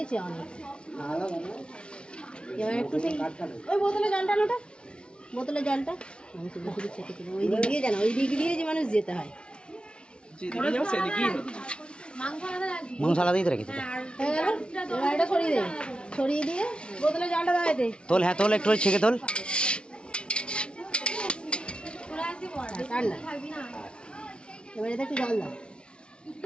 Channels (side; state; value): right; late; 0.057 ms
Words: অনেক। এবার একটু সেই ওই বোতলে জলটা নোটা, বোতলে জলটা ওই দিক দিয়ে জানা, ওই দিক দিয়ে যে মানুষ যেতে হয়। মাংস আলাদাই তো রেখেছে। হয়ে গেল, এবার এটা সরিয়ে দে, সরিয়ে দিয়ে বোতলে জলটা দাঁড়াইতে তোল, হ্যাঁ তোল, একটু ছেঁকে তোল। ঠান্ডা। এবার এতে একটু জল দাও,